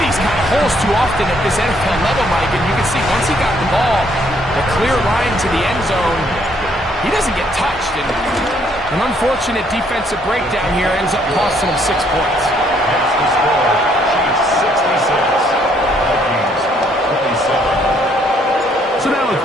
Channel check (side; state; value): both; normal; correlation 0.67